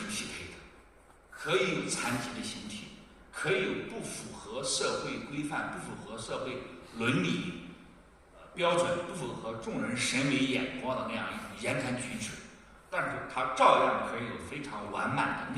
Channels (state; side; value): identical; both; correlation 1.00